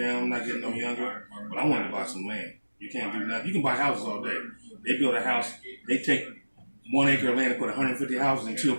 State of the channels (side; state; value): both; inverted; correlation -1.00